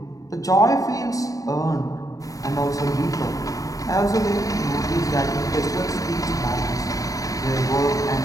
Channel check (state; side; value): late; right; 0.17 ms